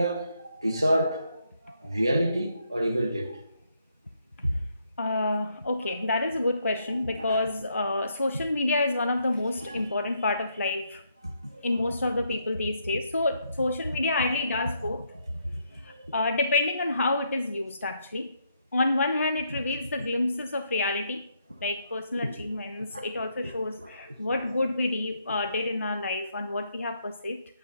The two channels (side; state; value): both; inverted; correlation -0.75